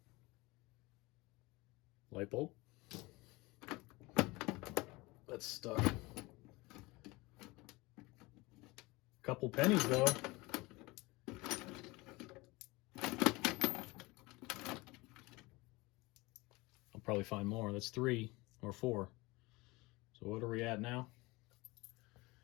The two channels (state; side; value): quieter; right; 23.0 dB